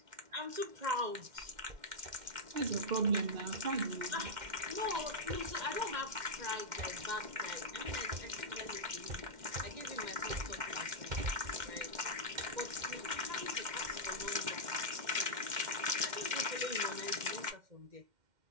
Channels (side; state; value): left; late; 2.1 ms